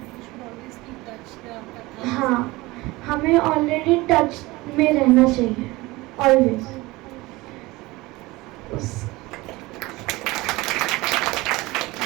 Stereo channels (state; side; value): quieter; left; 21.1 dB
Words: हाँ, हमें ऑलरेडी टच में रहना चाहिए ऑलवेज।